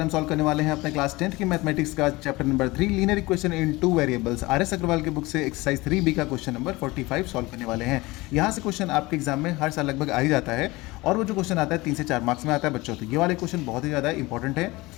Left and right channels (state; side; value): quieter; right; 21.6 dB